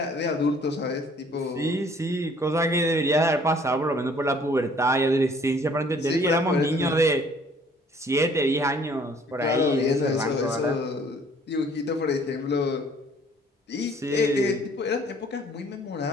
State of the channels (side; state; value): both; normal; correlation 0.57